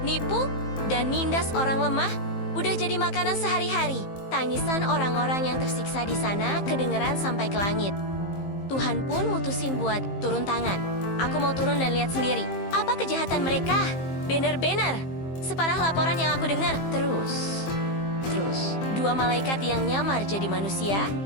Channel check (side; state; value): right; late; 15 ms